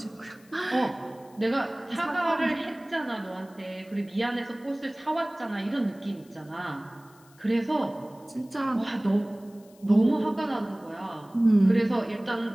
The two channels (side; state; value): left; noise; hiss, 28 dB below the sound